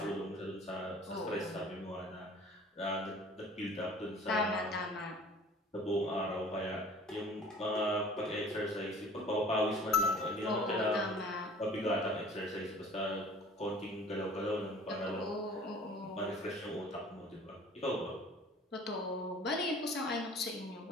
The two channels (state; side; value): normal; both; correlation 0.48